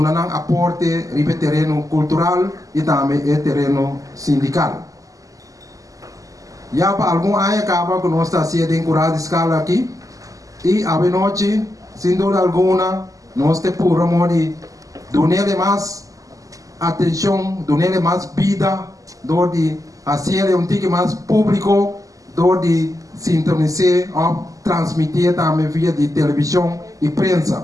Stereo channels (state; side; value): late; left; 0.17 ms